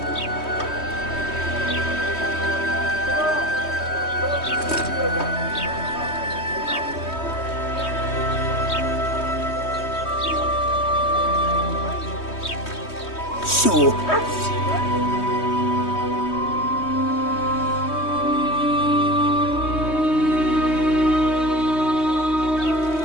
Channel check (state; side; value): late; right; 3.2 ms